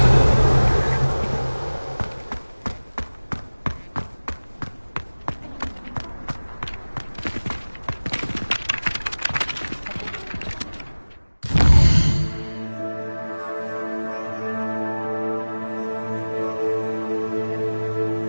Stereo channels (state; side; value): inverted; both; correlation -1.00